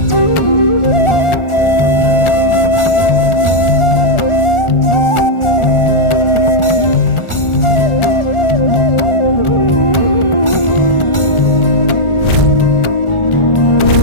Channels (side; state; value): right; late; 1.4 ms